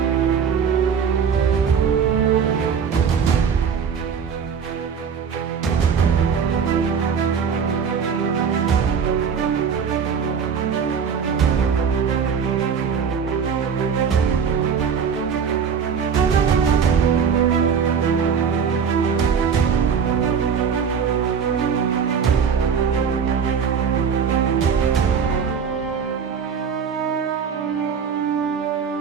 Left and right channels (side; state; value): left; quieter; 6.7 dB